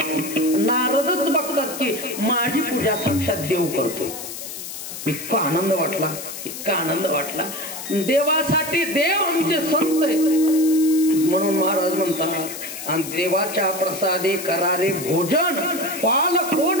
नारदच बघतात की माझी पूजा साक्षात देव करतोय. इतका आनंद वाटला, इतका आनंद वाटला. देवासाठी देव आमचे संत आहेत. म्हणून महाराज म्हणतात आणि देवाच्या प्रसादे करारे भोजन, पाल कोण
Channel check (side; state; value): left; noise; hiss, 9 dB below the sound